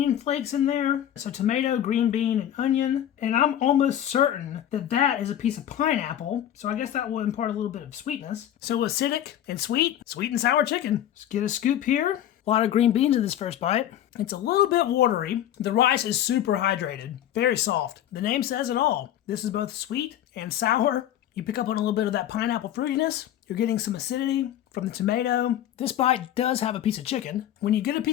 flakes in there. So tomato, green bean, and onion. And I'm almost certain that that is a piece of pineapple. So I guess that will impart a little bit of sweetness. So acidic and sweet and sour chicken. Let's get a scoop here. A lot of green beans in this first bite. It's a little bit watery. The rice is super hydrated, very soft. The name says it all. This is both sweet and sour. You pick up on a little bit of that pineapple fruitiness. You're getting some acidity from the tomato. This bite does have a piece of chicken. When you get a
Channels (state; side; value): quieter; right; 11.3 dB